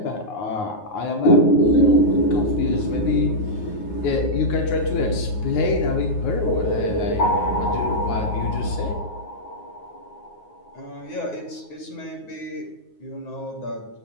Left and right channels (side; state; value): right; late; 9.5 ms